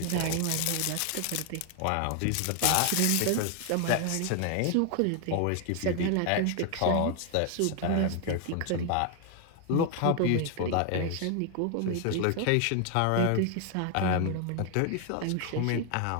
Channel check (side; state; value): both; different; correlation 0.00